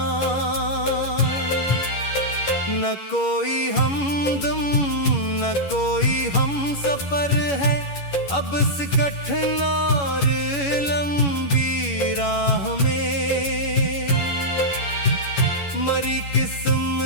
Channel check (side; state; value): right; late; 11 ms